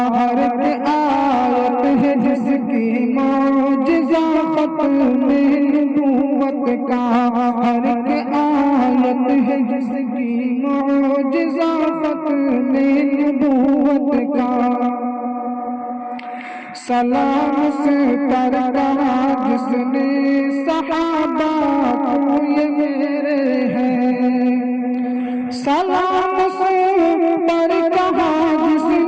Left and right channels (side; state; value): both; identical; correlation 1.00